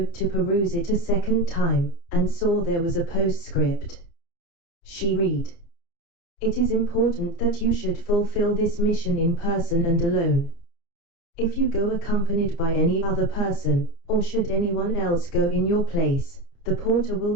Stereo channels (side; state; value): right; late; 29 ms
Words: to peruse it a second time, and saw there was a postscript. She read, "It is important that you should fulfill this mission in person and alone. If you go accompanied by any other person, or should anyone else go in your place, the porter will